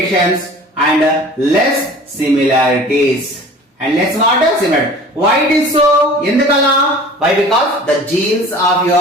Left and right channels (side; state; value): both; normal; correlation 0.44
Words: and less similarities. And less what? Similar. Why it is so? Endukala? Why? Because the genes of